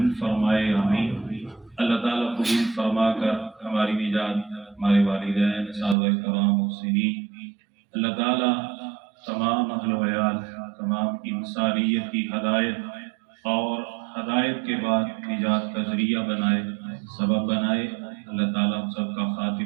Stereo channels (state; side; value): drops out; left; at 6.0 s